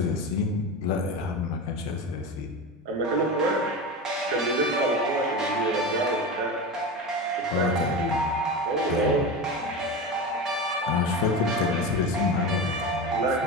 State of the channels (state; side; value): normal; both; correlation 0.23